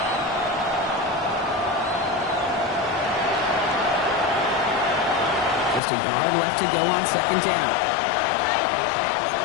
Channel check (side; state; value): right; drops out; at 5.8 s